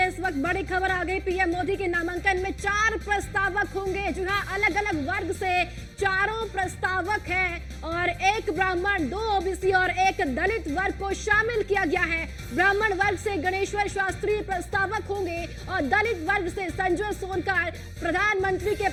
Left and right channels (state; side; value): identical; both; correlation 1.00